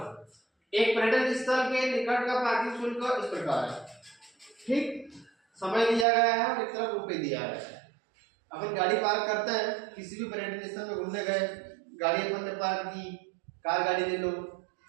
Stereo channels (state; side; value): drops out; left; at 6.1 s